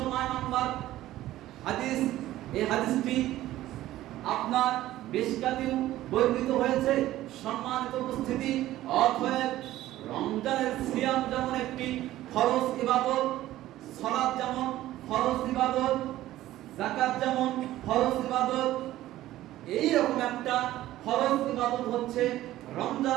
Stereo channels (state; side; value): quieter; left; 14.8 dB